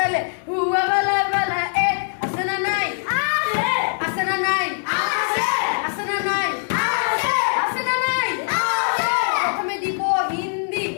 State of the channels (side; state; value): right; silent; digital silence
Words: হুয়া বালা বালা এ আছে না নাই আছে আছে না নাই আছে আছে না নাই আছে আছে না নাই আছে প্রথমে দিব হিন্দি